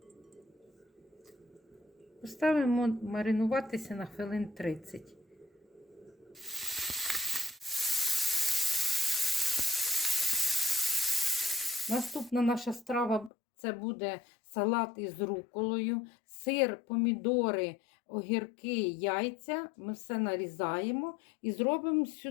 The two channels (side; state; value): right; drops out; at 13.3 s